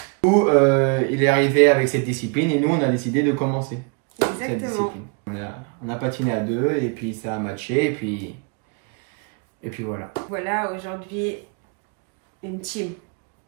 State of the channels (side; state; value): left; quieter; 34.8 dB